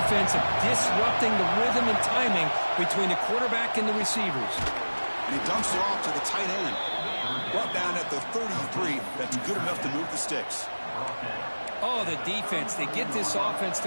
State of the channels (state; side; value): inverted; both; correlation -1.00